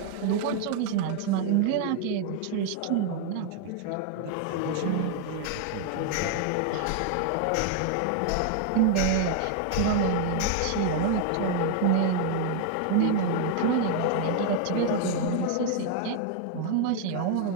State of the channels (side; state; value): both; different; correlation 0.00